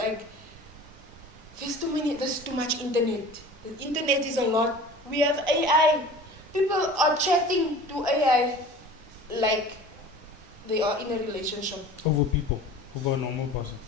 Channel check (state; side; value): normal; both; correlation 0.41